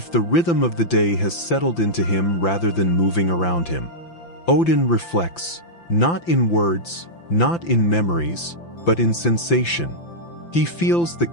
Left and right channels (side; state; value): right; late; 5.9 ms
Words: the rhythm of the day has settled into him rather than moving around him. Odin reflects, not in words, not in memories, but in sensation. He feels the